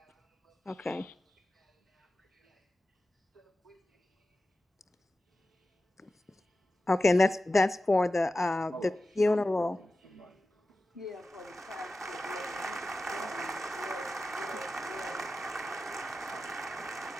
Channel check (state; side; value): normal; both; correlation 0.94